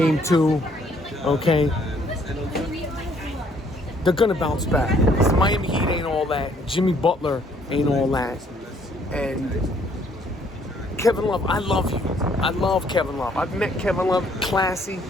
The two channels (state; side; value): normal; both; correlation 0.64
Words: 2, okay? They're going to bounce back. Because Miami Heat ain't all that. Jimmy Butler ain't all that. And Kevin Love, I love you. I love Kevin Love. I've met Kevin Love, classy.